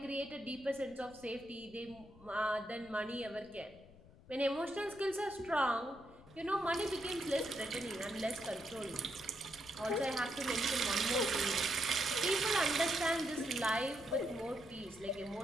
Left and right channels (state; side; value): noise; left; rumble, 22 dB below the sound